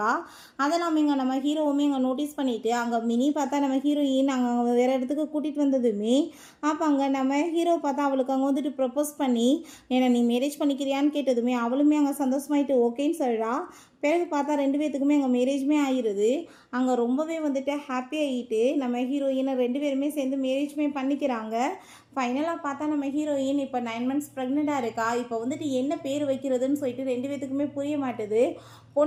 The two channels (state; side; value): identical; both; correlation 1.00